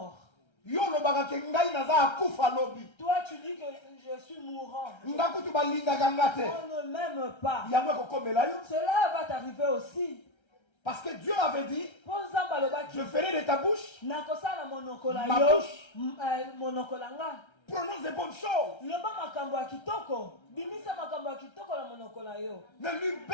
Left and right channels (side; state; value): right; late; 1.3 ms